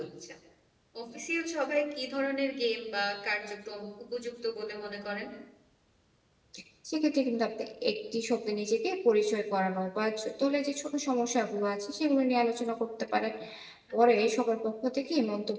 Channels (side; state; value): both; identical; correlation 1.00